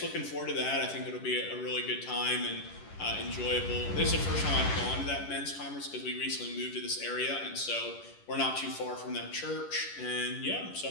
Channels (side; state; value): right; late; 10 ms